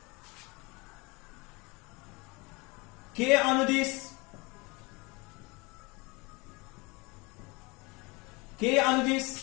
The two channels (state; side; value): quieter; right; 26.5 dB